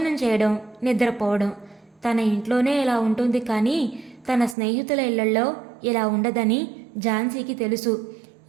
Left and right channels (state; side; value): drops out; left; at 4.5 s